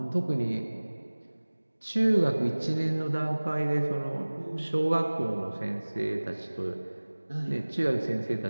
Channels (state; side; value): inverted; both; correlation -1.00